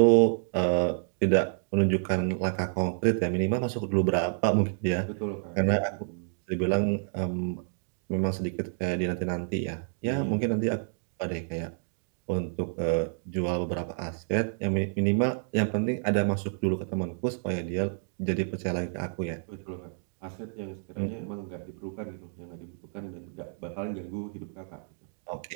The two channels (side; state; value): left; silent; digital silence